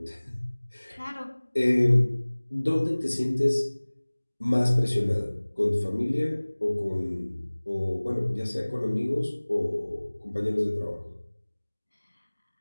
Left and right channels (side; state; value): both; inverted; correlation -1.00